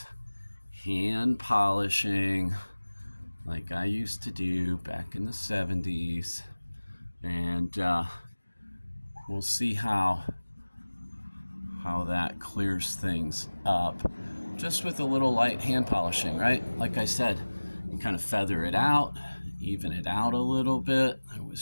hand polishing like I used to do back in the 70s. And we'll see how that clears things up just with a little light hand polishing, right? Like I said, you kind of feather it out, even it out a little bit. There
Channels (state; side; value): inverted; both; correlation -1.00